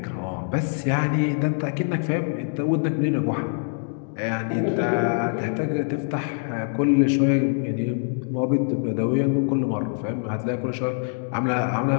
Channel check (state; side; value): silent; right; 59 dB below the other